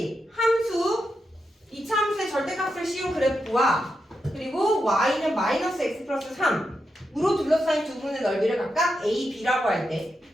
함수, 2차 함수의 절대값을 씌운 그래프와 그리고 y는 마이너스 x 플러스 3으로 둘러싸인 두 분의 넓이를 각각 a, b라고 할 때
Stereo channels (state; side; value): normal; both; correlation 0.86